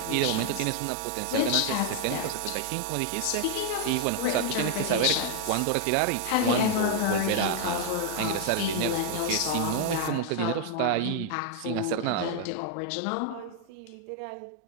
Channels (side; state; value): both; different; correlation 0.00